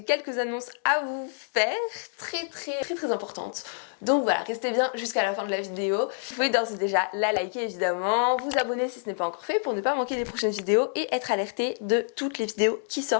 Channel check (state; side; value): silent; right; 60 dB below the other